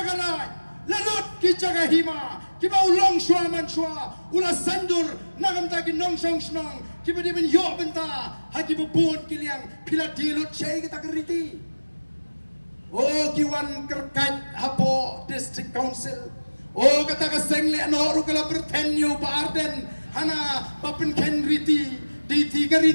lalut ki cakahima, kiba ulong shua man shua, ula sandur nagam taki nong shong snong, kiba di ben yo benta, haki bubun kiliang pila dilut syai kita keriti. Oh kiwan kerkat hapo district council. Oh kata kasengle no rukala bertenyo pa Arden. Hana papin ken riti di tiga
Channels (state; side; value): inverted; both; correlation -1.00